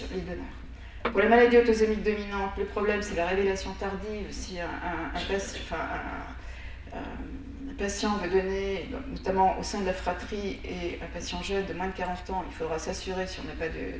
Pour les maladies autosomiques dominantes, le problème c'est la révélation tardive. Si un patient veut donner, notamment au sein de la fratrie, et un patient jeune de moins de 40 ans, il faudra s'assurer, si on n'a pas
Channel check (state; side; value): identical; both; correlation 1.00